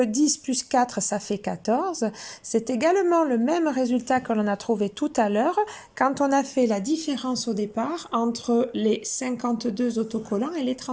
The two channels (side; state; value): both; identical; correlation 1.00